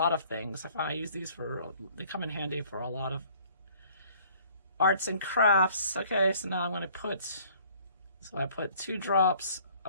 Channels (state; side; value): inverted; both; correlation -0.56